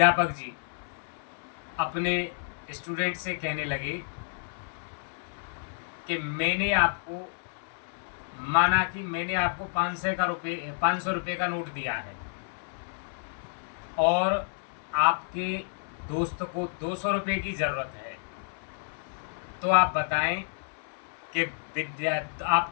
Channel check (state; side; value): silent; right; 58 dB below the other